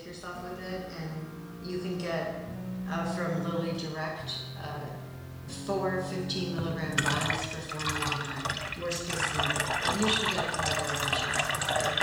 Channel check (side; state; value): both; identical; correlation 1.00